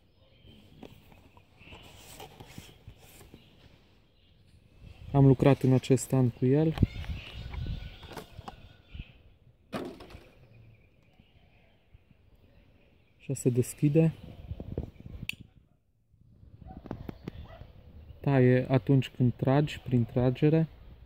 Am lucrat în acest an cu el. Așa se deschide. Taie atunci când tragi, prin tragere.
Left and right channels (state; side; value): identical; both; correlation 1.00